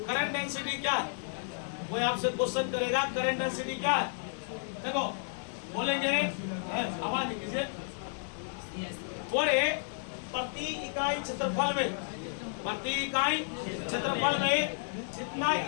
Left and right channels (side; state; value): right; silent; digital silence